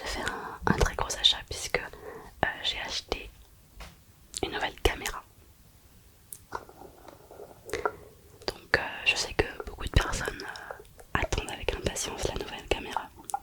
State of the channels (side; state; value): both; identical; correlation 1.00